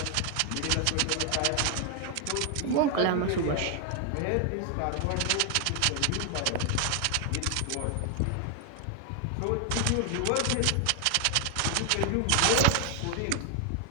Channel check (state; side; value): different; both; correlation 0.00